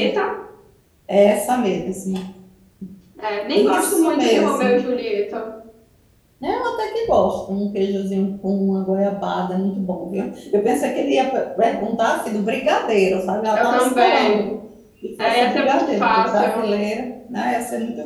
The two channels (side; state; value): both; identical; correlation 1.00